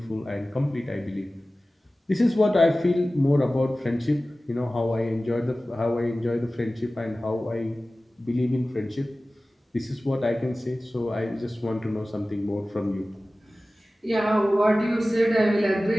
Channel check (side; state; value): both; normal; correlation 0.96